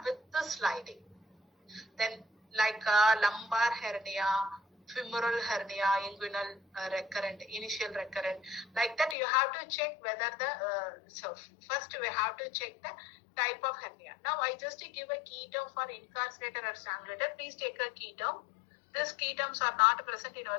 with the sliding. Then like lumbar hernia, femoral hernia, inguinal recurrent, initial recurrent. Like that you have to check whether the, first we have to check the type of hernia. Now I just give a key term for incarcerated or strangulated. Please take a key term. These key terms are not present in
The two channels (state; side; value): drops out; right; at 9.2 s